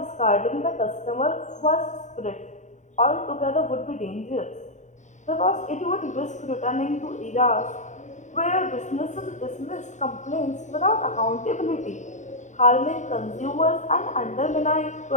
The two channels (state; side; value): late; right; 0.35 ms